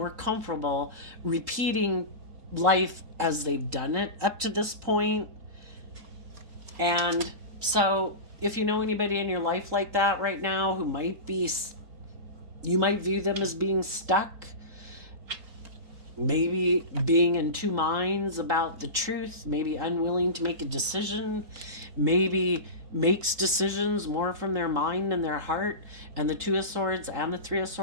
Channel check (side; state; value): left; late; 3.8 ms